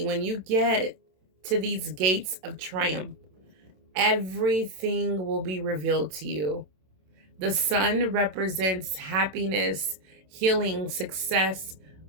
when you get to these gates of triumph, everything will be revealed to you. The sun represents happiness, healing, success,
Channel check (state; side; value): late; left; 27 ms